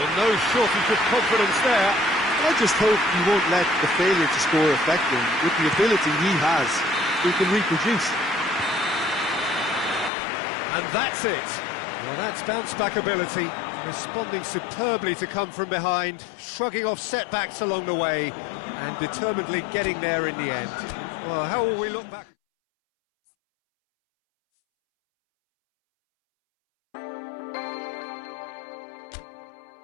no shortage of confidence there. I just hope he won't let the failure to score affect him. With the ability he has, he can reproduce. And that's it. Well, that's bounce-back ability, responding superbly to come from behind, shrugging off setbacks along the way, and determinedly getting there in the end. Well, how will we look back?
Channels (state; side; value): drops out; right; at 10.1 s